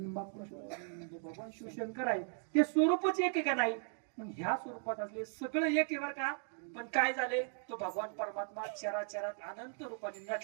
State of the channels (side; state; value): left; silent; 53 dB below the other